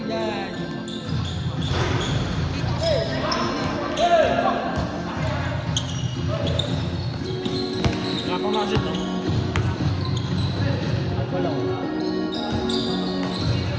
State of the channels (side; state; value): both; identical; correlation 1.00